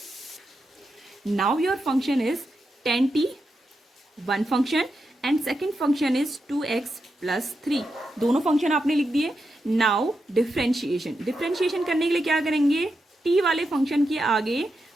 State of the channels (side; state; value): both; normal; correlation 0.86